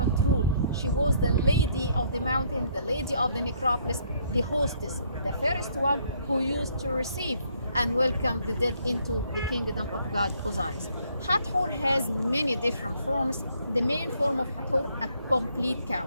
role. She was the lady of the mountain, the lady of the necropolis, the hostess, the first one who used to receive and welcome the dead into the kingdom of God Osiris. Hathor has many different forms. The main form of Hathor, a complete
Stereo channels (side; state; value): both; inverted; correlation -0.67